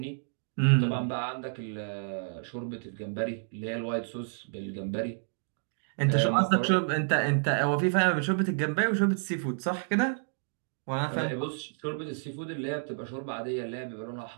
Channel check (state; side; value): silent; left; digital silence